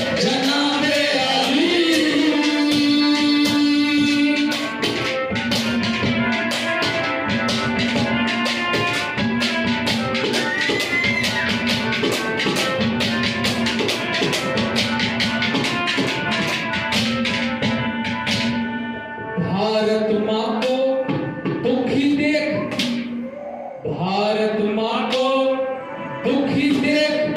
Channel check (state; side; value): identical; both; correlation 1.00